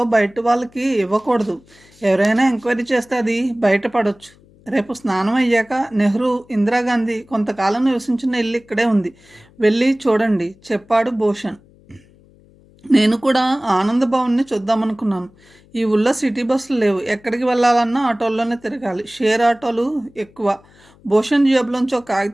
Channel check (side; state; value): left; noise; hum, 28 dB below the sound